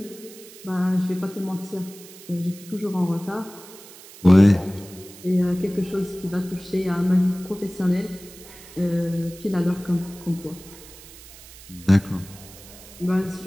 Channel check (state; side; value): noise; right; hiss, 19 dB below the sound